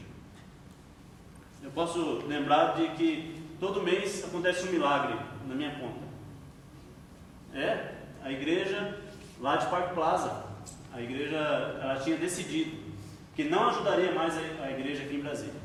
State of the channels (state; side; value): identical; both; correlation 1.00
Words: Eu posso lembrar de que todo mês acontece um milagre na minha conta. A igreja lá de Parque Plaza, a igreja, ela tinha decidido que não ajudaria mais a igreja aqui em Brasília.